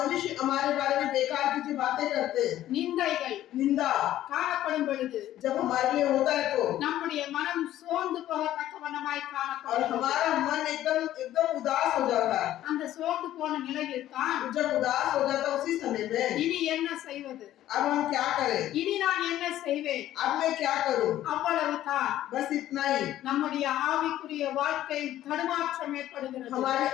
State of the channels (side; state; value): right; quieter; 13.2 dB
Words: हमारे बारे में बेकार की जो बातें करते हैं, நிந்தைகள் निंदा காணப்படும் பொழுது जब हमारे लिए होता है तो நம்முடைய மனம் சோர்ந்து போகத்தக்க வண்ணமாய் துக்கமாய் और காணப்படுகிறது. हमारा मन एकदम एकदम उदास हो जाता है। அந்த சோர்ந்து போன நிலையில் தான் जब उदास हो जाता है उसी समय में இனி என்ன செய்வது, अब हम क्या करें, இனி நான் என்ன செய்வேன், अब मैं क्या करूं, அவ்வளவுதான். बस इतना ही। நம்முடைய ஆவிக்குரிய வாழ்க்கை தடுமாற்றம் ஏற்படுகிறது. हमारे